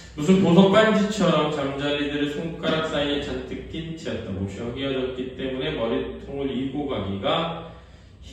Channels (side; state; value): both; identical; correlation 1.00